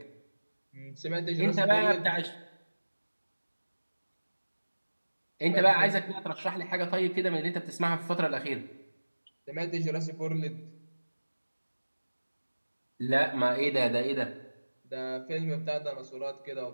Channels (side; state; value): both; inverted; correlation -1.00